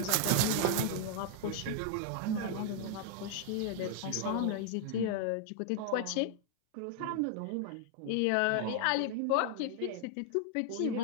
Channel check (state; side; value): different; both; correlation 0.00